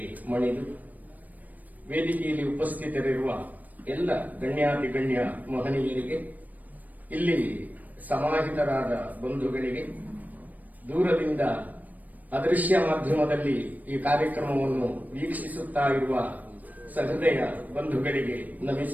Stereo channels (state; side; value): late; left; 0.080 ms